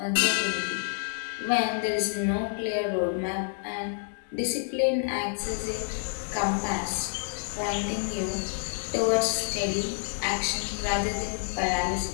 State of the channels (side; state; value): right; silent; digital silence